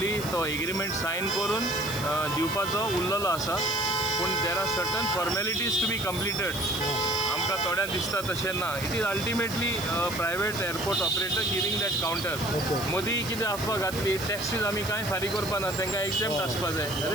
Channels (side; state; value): right; noise; hiss, 11 dB below the sound